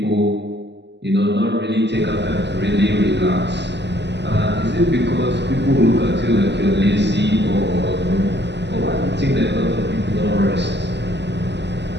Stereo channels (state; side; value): late; left; 0.50 ms